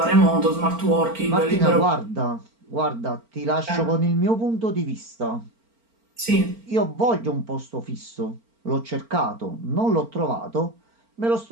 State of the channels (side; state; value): left; late; 4.4 ms